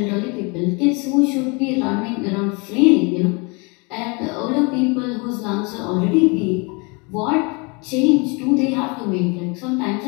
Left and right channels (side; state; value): right; quieter; 30.4 dB